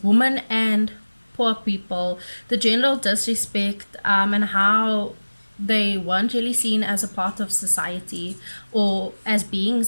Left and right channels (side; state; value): both; inverted; correlation -1.00